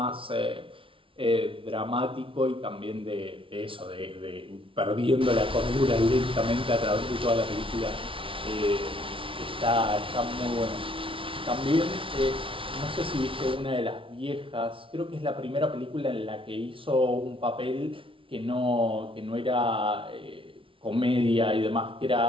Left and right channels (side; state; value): left; late; 0.25 ms